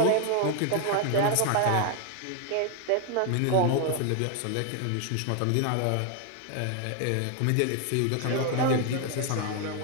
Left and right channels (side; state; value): both; different; correlation 0.00